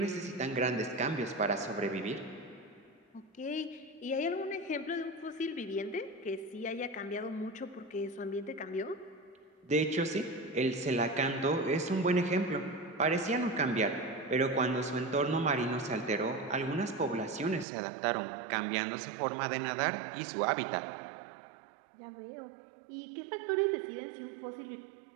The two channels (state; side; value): drops out; left; at 17.7 s